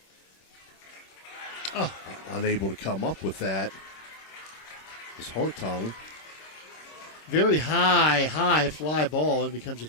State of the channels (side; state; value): right; late; 26 ms